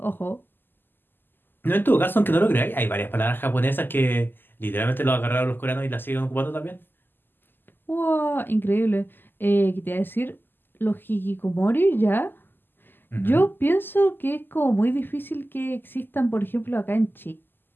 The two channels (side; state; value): right; late; 0.094 ms